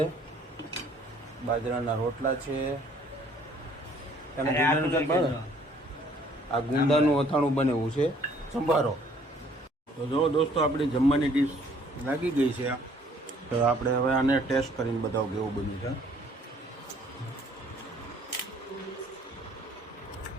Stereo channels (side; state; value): both; normal; correlation 0.60